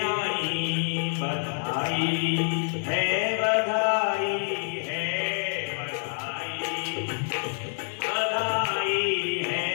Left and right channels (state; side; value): silent; right; 60 dB below the other